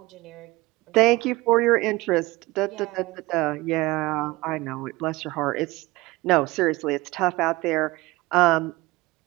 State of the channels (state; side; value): quieter; left; 21.0 dB